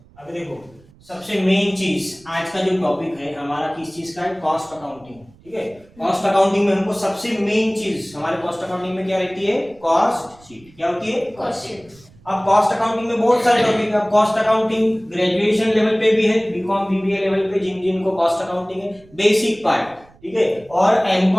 देखो, सबसे मेन चीज आज का जो टॉपिक है हमारा किस चीज का है, कॉस्ट अकाउंटिंग। ठीक है, कॉस्ट अकाउंटिंग में हमको सबसे मेन चीज हमारे कॉस्ट अकाउंटिंग में क्या रहती है, कॉस्ट शीट। क्या होती है, कॉस्ट शीट। अब कॉस्ट अकाउंटिंग में बहुत सारे टॉपिक है। अब कॉस्ट अकाउंटिंग ग्रेजुएशन लेवल पे भी है, बीकॉम बीबीए लेवल पे जिन जिनको कॉस्ट अकाउंटिंग है बेसिक पार्ट। ठीक है, और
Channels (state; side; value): noise; right; rumble, 27 dB below the sound